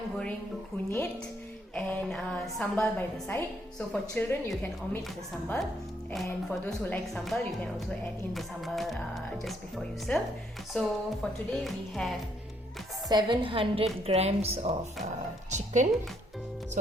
Goreng Kunyit and sambal by the side. So for children you can omit the sambal, and for those who like sambal you can also add in the sambal just before you serve. So for today we have 700 grams of chicken.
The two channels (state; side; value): normal; both; correlation 0.71